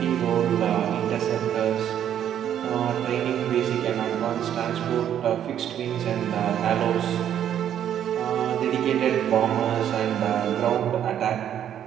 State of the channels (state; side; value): quieter; left; 10.0 dB